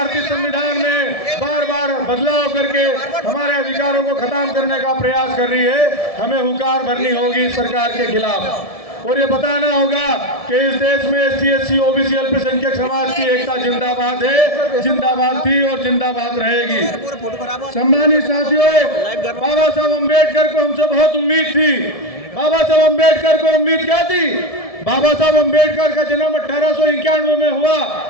संविधान में बार बार बदलाव करके हमारे अधिकारों को खत्म करने का प्रयास कर रही है। हमें हुंकार भरनी होगी सरकार के खिलाफ और ये बताना होगा कि इस देश में एससी, एससी, ओबीसी, अल्पसंख्यक समाज की एकता जिंदाबाद है, जिंदाबाद थी और जिंदाबाद रहेगी। सम्मानित साथियों, बाबा साहब अम्बेडकर को हमसे बहुत उम्मीद थी। बाबा साहब अम्बेडकर को उम्मीद क्या थी? बाबा साहब अम्बेडकर का जन्म 1891 में हुआ,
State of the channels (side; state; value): right; late; 1.7 ms